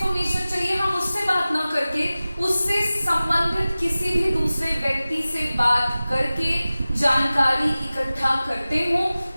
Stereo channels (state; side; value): inverted; both; correlation -0.97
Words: चाहिए हम उससे बात ना करके उससे संबंधित किसी भी दूसरे व्यक्ति से बात करके जानकारी इकट्ठा करते हो,